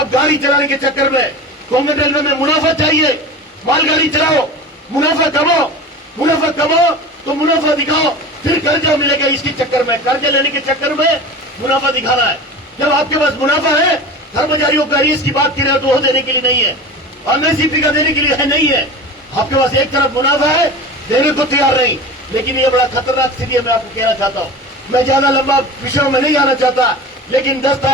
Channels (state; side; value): normal; both; correlation 0.33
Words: गाड़ी चलाने के चक्कर में, कोंकण रेलवे में मुनाफा चाहिए, मालगाड़ी चलाओ, मुनाफा कमाओ तो मुनाफा दिखाओ, फिर कर्जा मिलेगा। इसके चक्कर में, कर्जा लेने के चक्कर में मुनाफा दिखाना है। जब आपके पास मुनाफा है, कर्मचारियों का आईएएस की बात कर रहे हो तो वो देने के लिए नहीं है, एमएसपी का देने के लिए है, नहीं है। आपके पास एक तरफ मुनाफा है, देने को तैयार नहीं। लेकिन ये बड़ा खतरनाक स्थिति है। मैं आपको कहना चाहता हूँ, मैं ज्यादा लंबा विषयों में नहीं आना चाहता, लेकिन 10